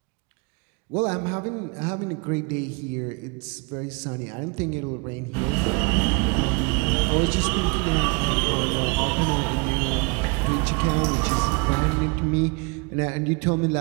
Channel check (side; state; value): left; quieter; 30.7 dB